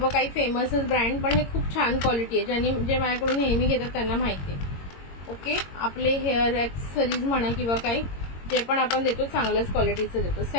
काही फेमसच ब्रँड, पण हे खूप छान क्वालिटी आहे. जे माझ्याकडून नेहमी घेतात त्यांना माहिती आहे. ओके, आपले हेअर ॲक्सेसरीज म्हणा किंवा काही जे पण आपण देतो चांगल्याच क्वालिटीचं देतो.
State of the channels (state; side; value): late; right; 22 ms